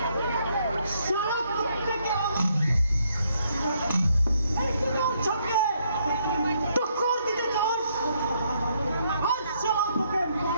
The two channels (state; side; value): inverted; both; correlation -0.72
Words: সারা প্রত্যেকে চোখে টক্কর দিতে চাস। আজ সারা তোকে